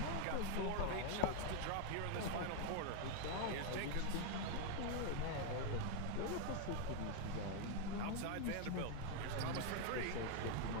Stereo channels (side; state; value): both; different; correlation 0.00